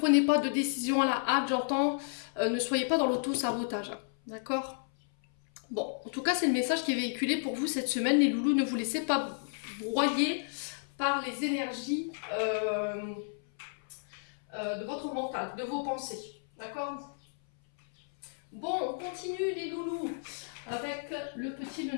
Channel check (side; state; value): right; silent; 56 dB below the other